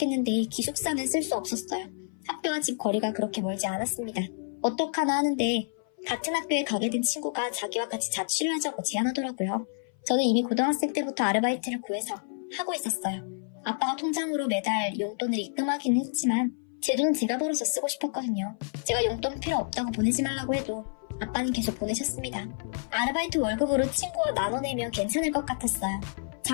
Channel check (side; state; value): right; silent; 57 dB below the other